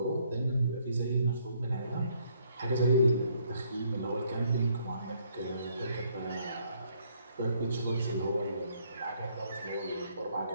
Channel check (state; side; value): inverted; both; correlation -0.67